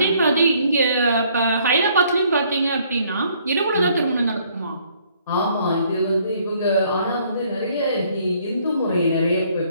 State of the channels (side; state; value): both; inverted; correlation -0.64